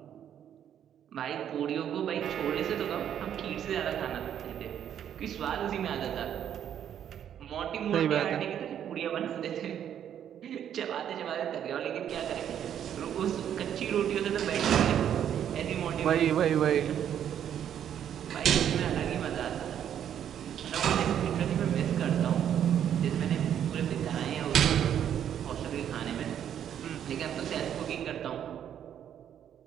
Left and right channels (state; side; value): quieter; left; 9.6 dB